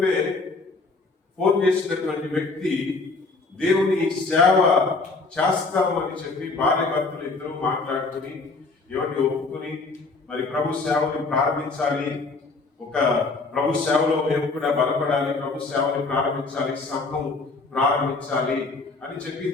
ఫోన్ చేసినటువంటి వ్యక్తి దేవుని సేవ చేస్తామని చెప్పి భార్య భర్తలు ఇద్దరు మాట్లాడుకుని ఎవరిని ఒప్పుకుని మరి ప్రభు సేవని ప్రారంభించాలి, ఒక ప్రభు సేవలో మేము కూడా బలపడాలి, ప్రభు సేవని ప్రారంభించాలి, సంఘం ప్రారంభించాలి అని చెప్పి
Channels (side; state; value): right; quieter; 3.8 dB